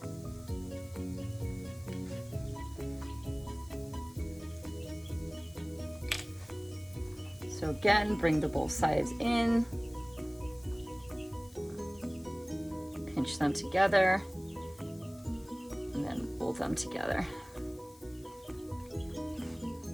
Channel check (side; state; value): left; noise; hiss, 24 dB below the sound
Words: So again, bring the both sides in, pinch them together, and then roll them together.